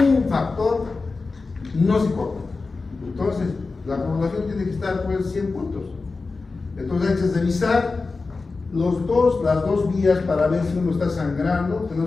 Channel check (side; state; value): right; quieter; 4.0 dB